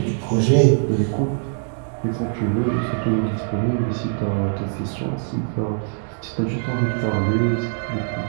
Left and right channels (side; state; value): left; silent; 64 dB below the other